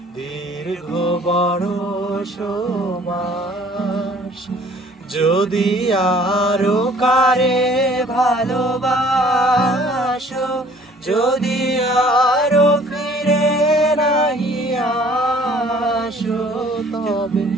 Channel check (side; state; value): both; normal; correlation 0.55